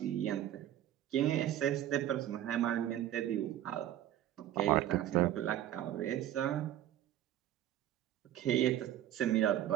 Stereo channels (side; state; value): left; quieter; 12.2 dB